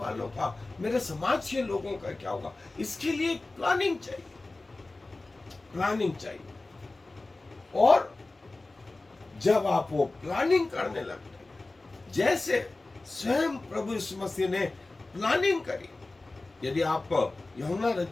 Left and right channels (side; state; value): right; quieter; 3.1 dB